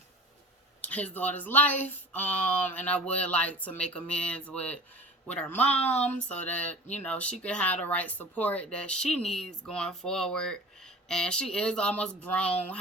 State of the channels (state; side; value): normal; both; correlation 0.39